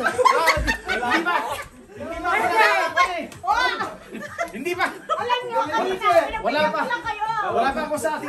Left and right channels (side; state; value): both; identical; correlation 1.00